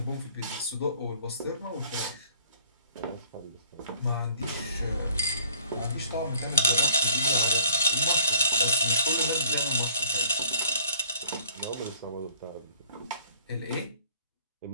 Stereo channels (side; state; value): both; inverted; correlation -0.56